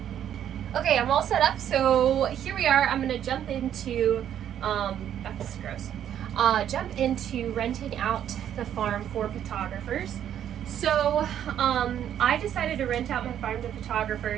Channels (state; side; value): quieter; left; 10.1 dB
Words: Okay, I'm all set up, so here we are. I'm gonna jump into that's gross. Jump into renting out the farm for photographers. So I decided to rent out my farm to